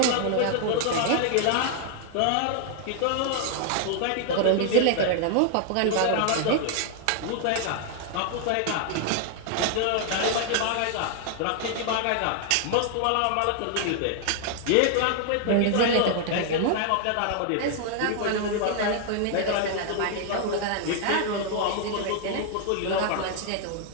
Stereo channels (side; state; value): both; different; correlation 0.00